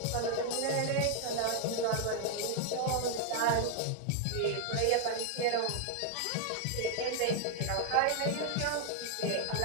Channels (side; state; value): both; different; correlation 0.00